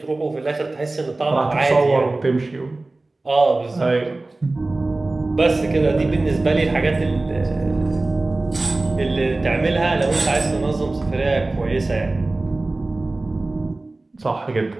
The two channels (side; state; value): left; quieter; 3.1 dB